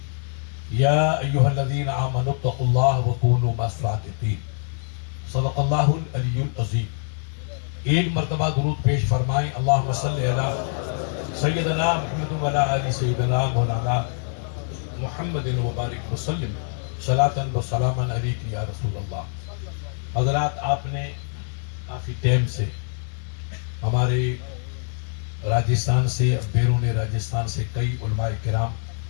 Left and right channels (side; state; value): right; silent; 62 dB below the other